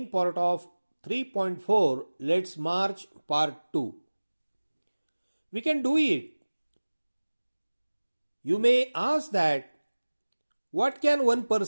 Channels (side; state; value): both; inverted; correlation -1.00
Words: part of 3.4 Let's March part 2. We can do it. You may ask that what can one